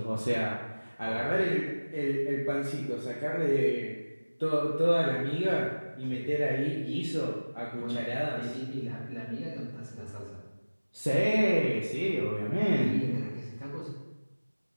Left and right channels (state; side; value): inverted; both; correlation -1.00